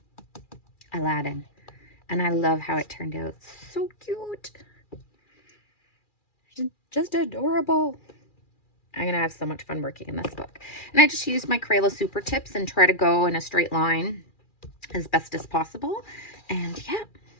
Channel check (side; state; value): right; late; 2.4 ms